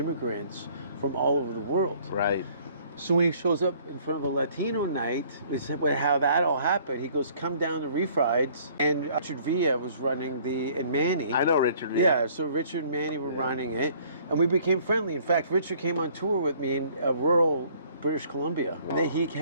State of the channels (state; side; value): inverted; both; correlation -0.58